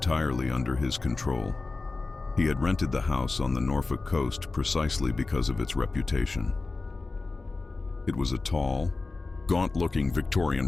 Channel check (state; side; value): quieter; right; 3.7 dB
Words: under his control. He had rented the house on the Norfolk coast precisely because of its reputation. It was a tall, gaunt-looking